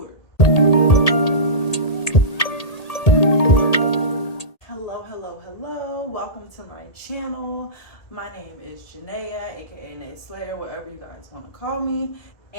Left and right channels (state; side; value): late; right; 1.8 ms